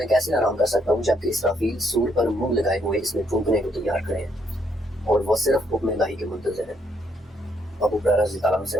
کیسے آرام کر سکتا ہوں جبکہ اسرافیل سور پر منہ لگائے ہوئے اس میں پھونکنے کو تیار کھڑے ہیں اور وہ صرف حکم الہی کے منتظر ہیں۔ ابو ہریرہ رضی اللہ عنہ سے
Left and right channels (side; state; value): both; normal; correlation 0.73